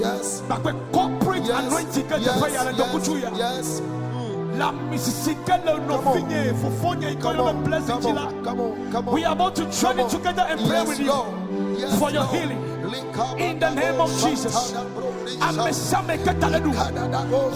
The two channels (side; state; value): both; identical; correlation 1.00